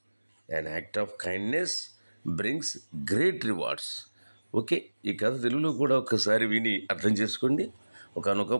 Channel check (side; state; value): both; inverted; correlation -1.00